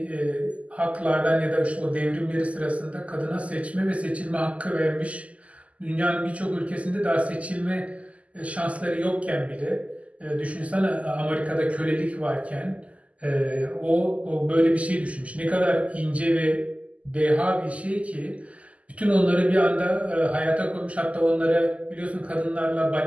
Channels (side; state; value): left; late; 0.067 ms